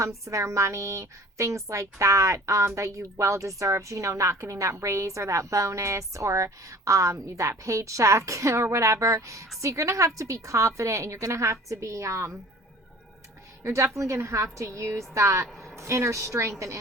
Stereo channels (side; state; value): both; normal; correlation 0.46